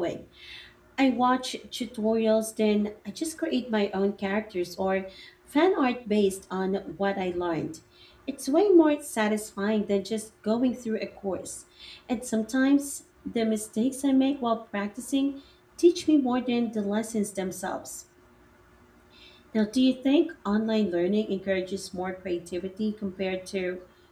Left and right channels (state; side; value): identical; both; correlation 1.00